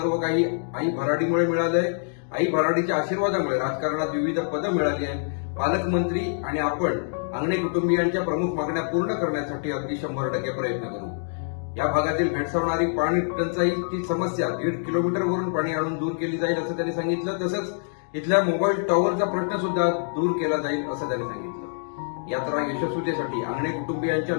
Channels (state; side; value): silent; right; digital silence